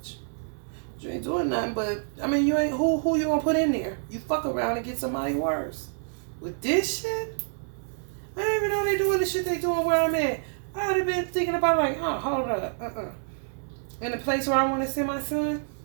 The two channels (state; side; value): silent; left; digital silence